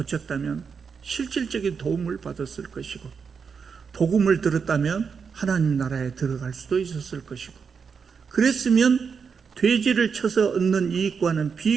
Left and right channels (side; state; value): left; quieter; 6.0 dB